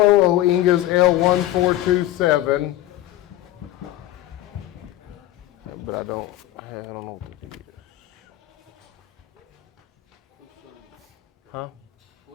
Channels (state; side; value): quieter; right; 14.7 dB